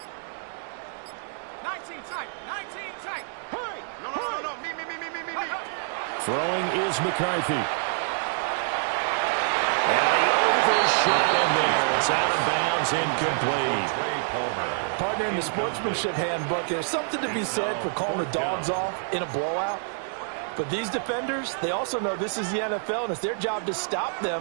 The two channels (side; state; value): left; silent; digital silence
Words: 19 tight. 19 tight. Hurry. No. Me. Throwing is McCarthy. And he overshot him there. It's out of bounds, incomplete. Partner, in the sportsmanship handbook, there's something to be said for calling the dogs off in a blowout. But these defenders, they also know this is the NFL, and it's their job to stop